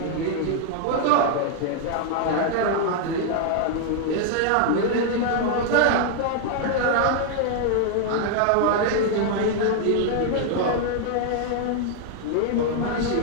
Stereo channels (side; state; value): both; different; correlation 0.00